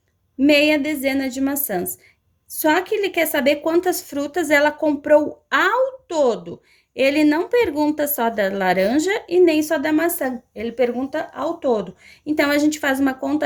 Meia dezena de maçãs. Só que ele quer saber quantas frutas ela comprou ao todo. Ele não pergunta só da laranja e nem só da maçã. Ele pergunta ao todo. Então, a gente faz uma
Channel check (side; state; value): both; identical; correlation 1.00